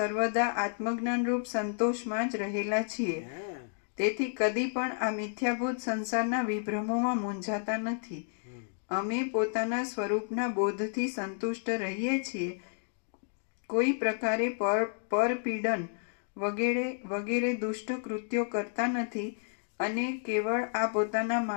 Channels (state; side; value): silent; right; digital silence